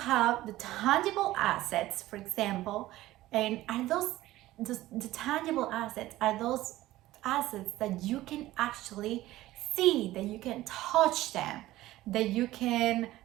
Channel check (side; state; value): left; quieter; 16.2 dB